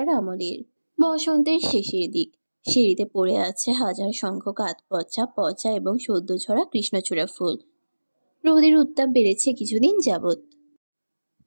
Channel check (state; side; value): inverted; both; correlation -1.00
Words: আমলের। বসন্তের শেষের দিক। সিঁড়িতে পড়ে আছে হাজার সংখ্যক আধপচা পচা এবং সদ্য ঝরা কৃষ্ণচূড়া ফুল। রোদের উত্তাপ বেড়েছে কিছুদিন যাবৎ।